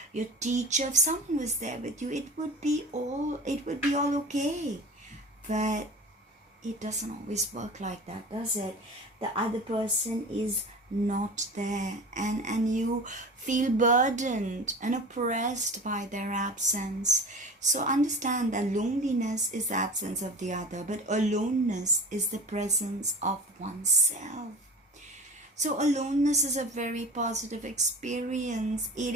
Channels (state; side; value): normal; both; correlation 0.35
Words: your teacher, if someone was there with you, it would be all okay. But it doesn't always work like that, does it? The other person is not there, and you feel burdened and oppressed by their absence. So understand that loneliness is the absence of the other, but aloneness is the presence of oneself. So aloneness is a very positive experience.